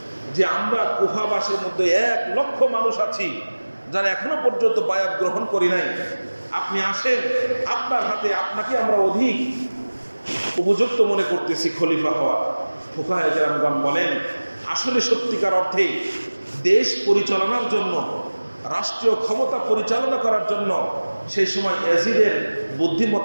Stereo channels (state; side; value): inverted; both; correlation -1.00